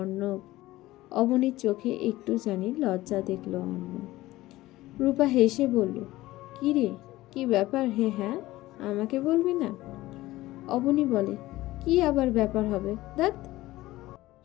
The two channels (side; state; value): right; quieter; 17.4 dB